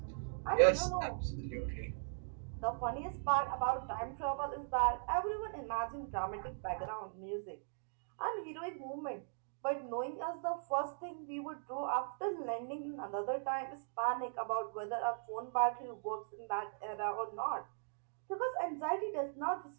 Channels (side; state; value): left; silent; digital silence